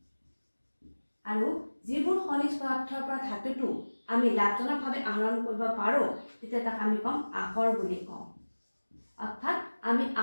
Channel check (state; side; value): inverted; both; correlation -1.00